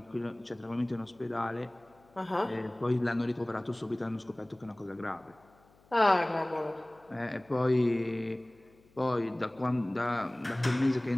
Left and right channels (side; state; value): left; noise; hum, 30 dB below the sound